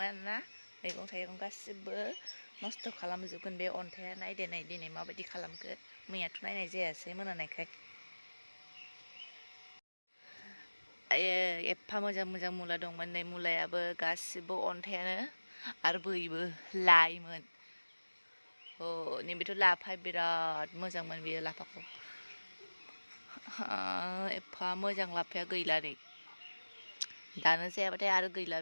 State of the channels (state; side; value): inverted; both; correlation -1.00